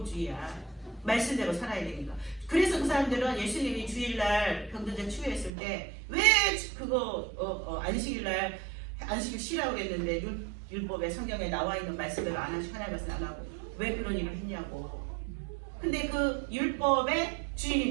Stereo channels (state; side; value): drops out; left; at 5.5 s